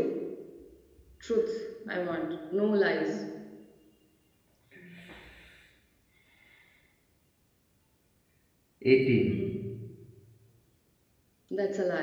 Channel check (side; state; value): both; identical; correlation 1.00